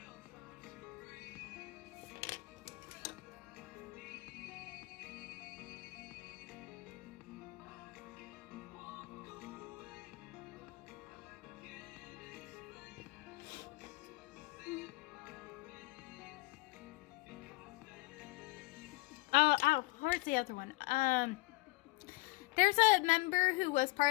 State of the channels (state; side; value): quieter; right; 23.4 dB